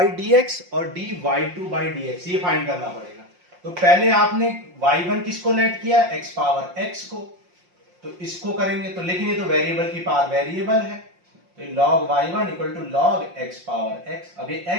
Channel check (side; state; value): left; late; 5.6 ms